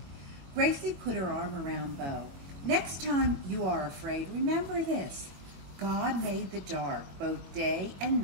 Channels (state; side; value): late; left; 22 ms